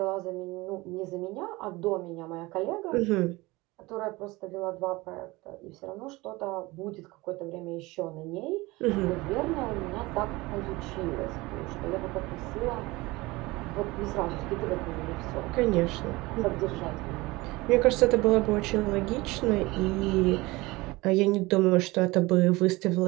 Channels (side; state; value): left; quieter; 21.7 dB